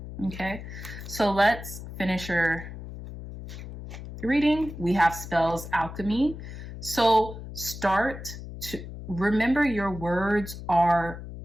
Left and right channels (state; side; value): noise; left; hum, 11 dB below the sound